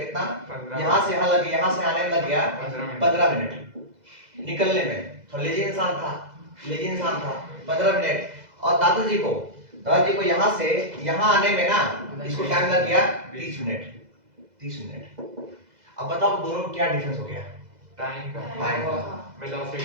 यहाँ से यहाँ लग गया, यहाँ से आने में लग गया 15 मिनट, निकलने में, तो लेजी इंसान था 15 मिनट, और दादाजी को यहाँ से यहाँ आने में ना इसको टाइम लग गया 30 मिनट 30 मिनट। अब बताओ दोनों में क्या डिफरेंस हो गया? टाइम का,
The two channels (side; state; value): left; late; 2.0 ms